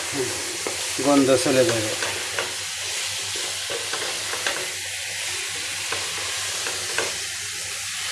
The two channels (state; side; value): identical; both; correlation 1.00